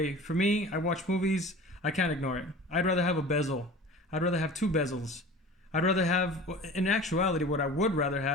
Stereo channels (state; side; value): normal; both; correlation 0.39